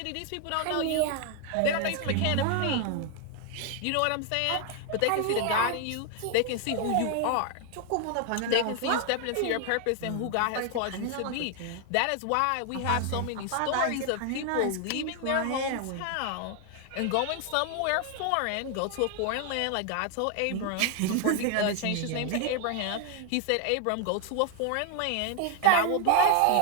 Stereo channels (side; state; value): both; different; correlation 0.00